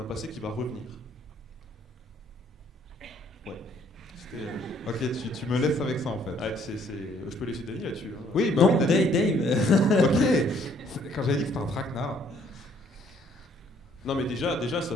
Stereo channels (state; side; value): normal; both; correlation 0.63